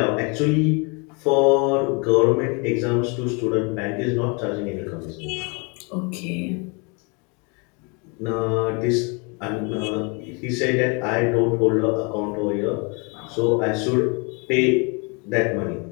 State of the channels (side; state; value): right; quieter; 32.5 dB